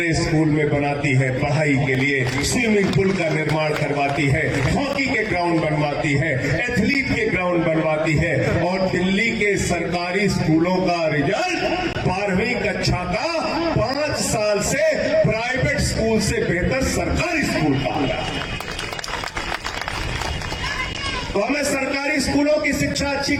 स्कूल में बनाती है, पढ़ाई के लिए स्विमिंग पूल का निर्माण करवाती है, हॉकी के ग्राउंड बनवाती है, एथलीट के ग्राउंड बनवाती है। और दिल्ली के सरकारी स्कूलों का रिजल्ट 12वीं कक्षा का 5 साल से प्राइवेट स्कूल से बेहतर सरकारी स्कूल का आ रहा है। तो हमें सरकारी स्कूलों की शिक्षा अच्छी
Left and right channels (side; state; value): both; identical; correlation 1.00